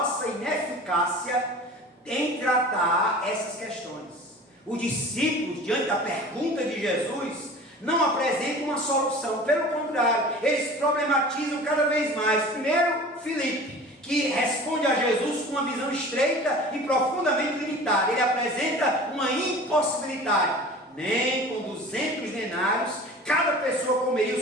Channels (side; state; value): both; normal; correlation 0.40